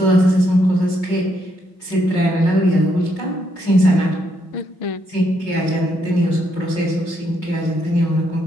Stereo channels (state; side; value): late; right; 5.5 ms